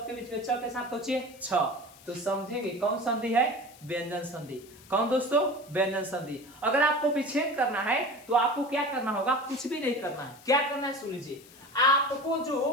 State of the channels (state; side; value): noise; left; hiss, 23 dB below the sound